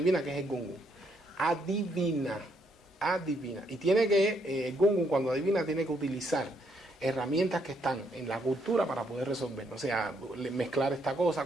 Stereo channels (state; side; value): normal; both; correlation 0.73